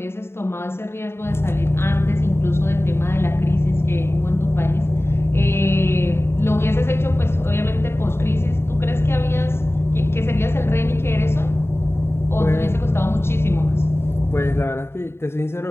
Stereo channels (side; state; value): right; late; 0.12 ms